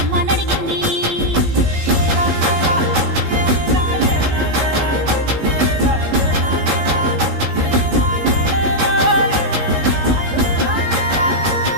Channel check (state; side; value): late; left; 15 ms